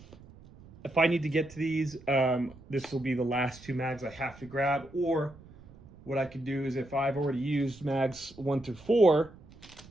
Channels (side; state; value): right; noise; rumble, 21 dB below the sound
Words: If I need to get to these, this will be the last 2 mags I have to grab. Or what I could do is, if I've already used mags 1 through 4